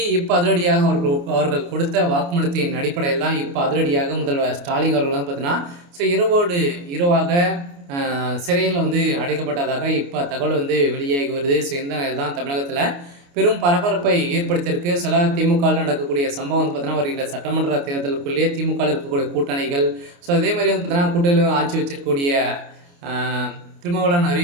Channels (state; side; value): late; left; 29 ms